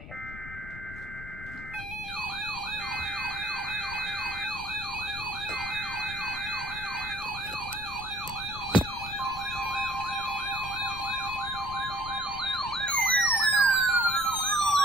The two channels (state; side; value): noise; left; rumble, 12 dB below the sound